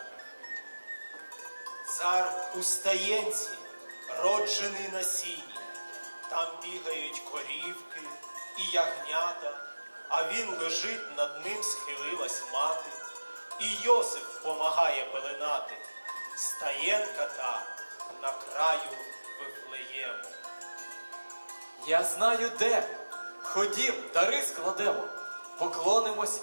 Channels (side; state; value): both; inverted; correlation -1.00